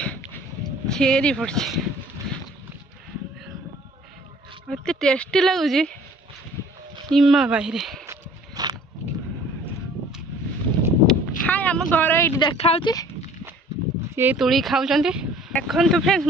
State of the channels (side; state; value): both; normal; correlation 0.51